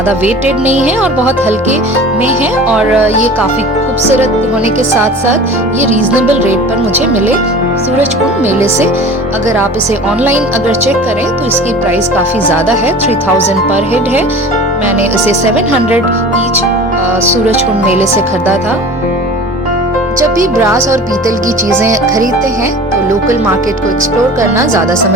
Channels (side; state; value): both; normal; correlation 0.39